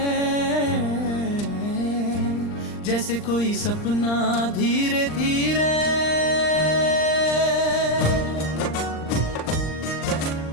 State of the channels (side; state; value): right; late; 39 ms